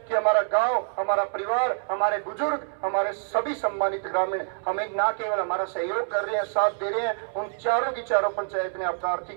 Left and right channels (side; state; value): left; silent; 61 dB below the other